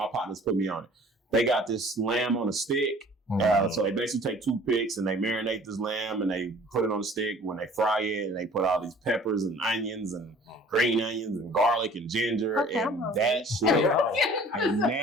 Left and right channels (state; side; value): normal; both; correlation 0.50